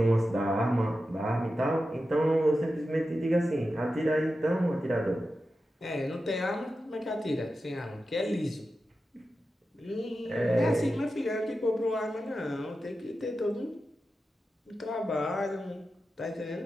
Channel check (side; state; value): both; normal; correlation 0.91